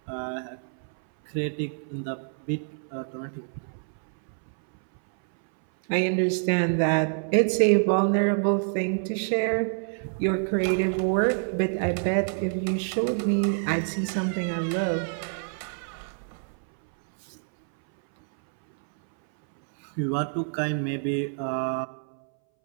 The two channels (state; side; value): silent; left; 60 dB below the other